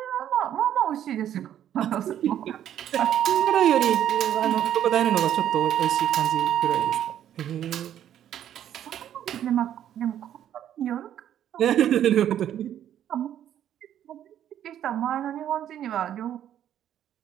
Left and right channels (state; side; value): quieter; left; 10.7 dB